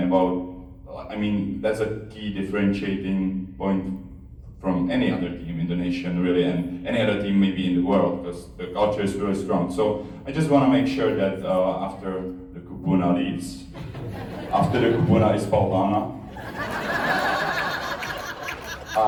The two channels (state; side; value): identical; both; correlation 1.00